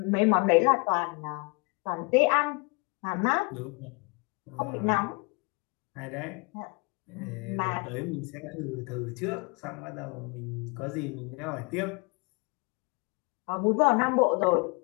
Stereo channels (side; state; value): right; quieter; 29.9 dB